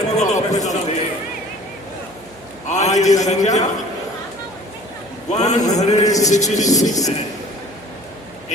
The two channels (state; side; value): noise; right; hum, 25 dB below the sound